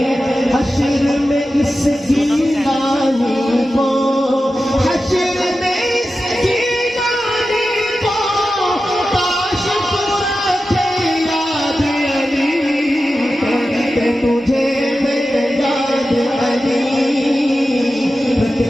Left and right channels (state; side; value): normal; both; correlation 0.92